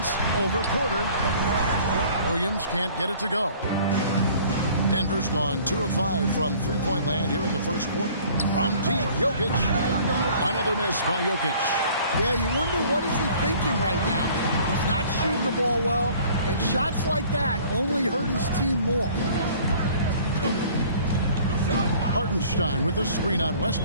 over Porter. Williams can't get it to go. Denver's gone 2 of 5 from three-point land here in the first quarter. From deep, Jokic. Another miss by Jokic. Yeah, you wonder what is he thinking right now. He's not shooting the ball well, and shots like that only hurt his team more. Hartenstein with the screen on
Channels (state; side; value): inverted; both; correlation -0.52